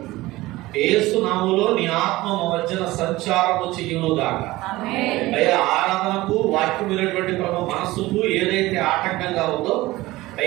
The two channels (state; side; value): quieter; left; 18.8 dB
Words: యేసు నామములో నీ ఆత్మ మధ్యన సంచారము చెయ్యును గాక. అయ్యా ఆరాధనకు వాక్యం వినేటువంటి ప్రభు మనస్సుకు ఏదైతే ఆటంకంగా ఉందో